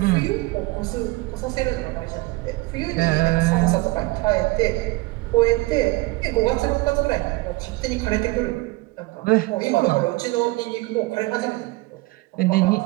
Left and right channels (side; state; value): left; quieter; 22.4 dB